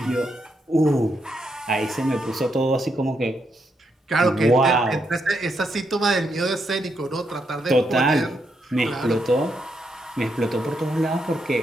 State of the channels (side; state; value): both; normal; correlation 0.80